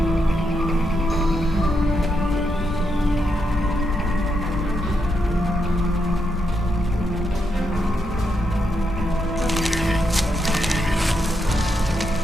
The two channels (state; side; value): normal; both; correlation 0.82